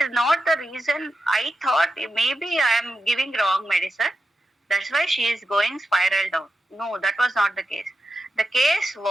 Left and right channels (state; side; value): normal; both; correlation 0.88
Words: not the reason. I thought maybe I am giving wrong medicine. That's why she is going spiral down. No, that was not the case. The case